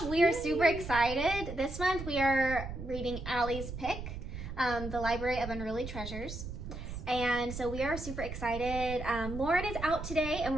We are super excited. This month we are reading Allie's pick, The Library of Unruly Treasures. And so we are super excited. Lauren is out today and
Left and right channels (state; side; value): noise; right; rumble, 8 dB below the sound